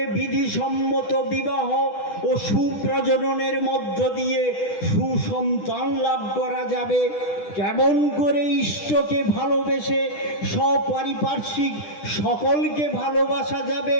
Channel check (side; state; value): right; late; 10 ms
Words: বিধিসম্মত বিবাহ ও সুপ্রজননের মধ্য দিয়ে সুসন্তান লাভ করা যাবে, কেমন করে ইষ্টকে ভালোবেসে সপারিপার্শ্বিক সকলকে ভালোবাসা যাবে,